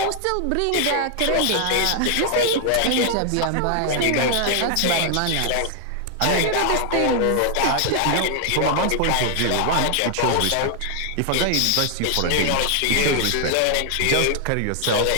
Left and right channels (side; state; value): both; different; correlation 0.00